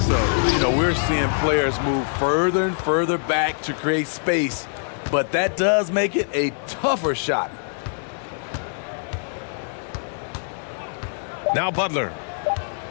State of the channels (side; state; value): right; silent; digital silence